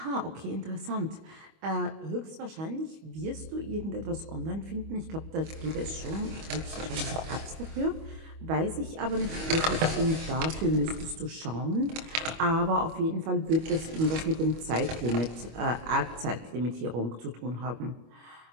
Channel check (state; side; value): late; left; 25 ms